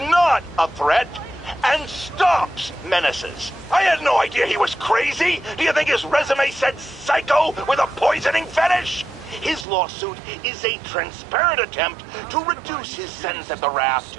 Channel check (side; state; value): left; drops out; at 9.7 s